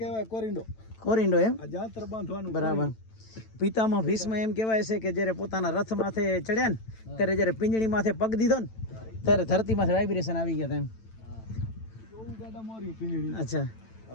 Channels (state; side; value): late; right; 9.0 ms